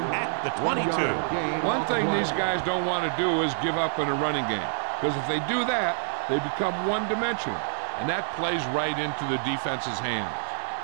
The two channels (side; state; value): left; silent; 60 dB below the other